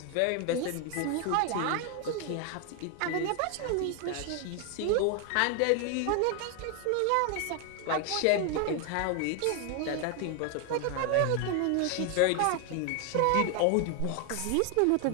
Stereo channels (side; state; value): both; different; correlation 0.01